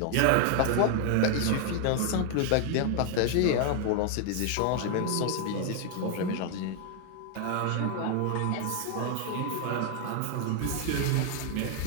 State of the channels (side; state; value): both; different; correlation 0.00